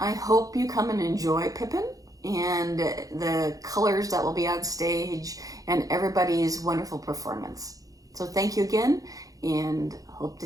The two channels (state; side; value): late; left; 0.17 ms